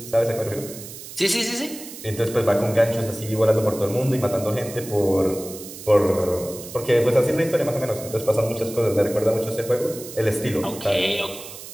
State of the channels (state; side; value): noise; right; hiss, 13 dB below the sound